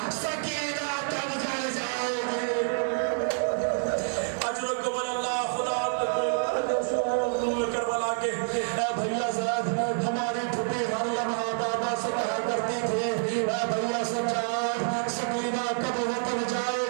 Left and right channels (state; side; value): silent; left; 59 dB below the other